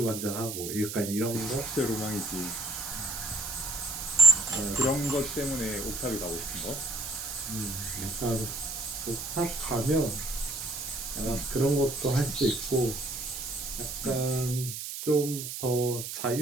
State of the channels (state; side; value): noise; right; hiss, 6 dB below the sound